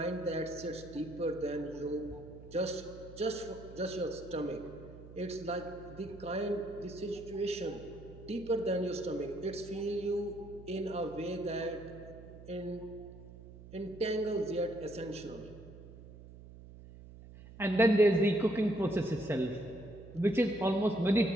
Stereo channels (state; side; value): noise; right; hum, 17 dB below the sound